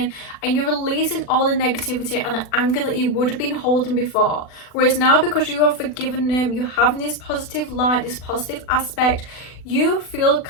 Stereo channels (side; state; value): right; late; 40 ms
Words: and you're releasing all the negativity and the anger that you would have been holding before. Whereas now, because you are forgiving them, you're having this positive light, this positive aspect, you feel